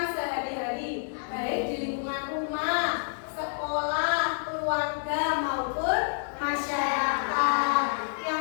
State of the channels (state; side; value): silent; right; digital silence